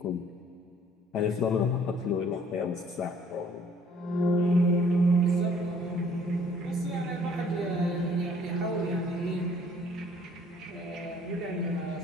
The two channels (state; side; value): normal; both; correlation 0.58